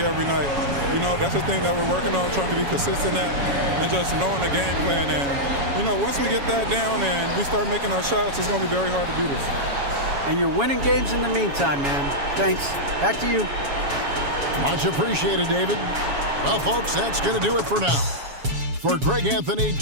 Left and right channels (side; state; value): left; late; 7.2 ms